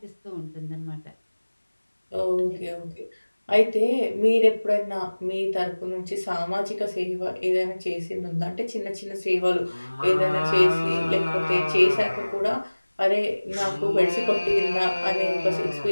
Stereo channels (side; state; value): both; inverted; correlation -1.00